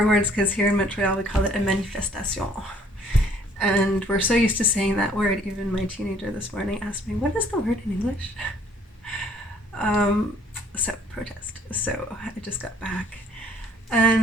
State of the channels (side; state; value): both; normal; correlation 0.59